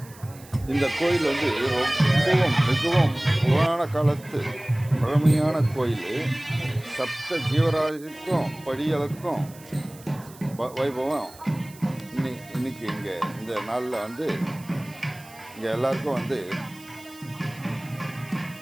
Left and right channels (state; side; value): noise; right; hiss, 22 dB below the sound